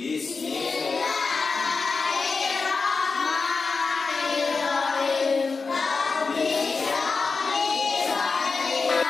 Rabbi shrah li sadri.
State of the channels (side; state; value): right; quieter; 4.5 dB